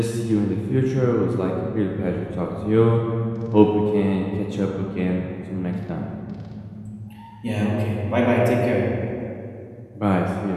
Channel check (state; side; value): identical; both; correlation 1.00